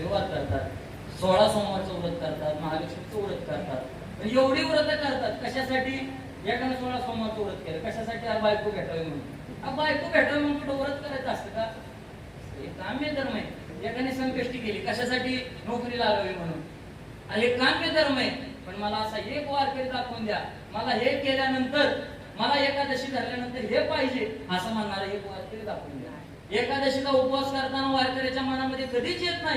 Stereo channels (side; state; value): both; identical; correlation 1.00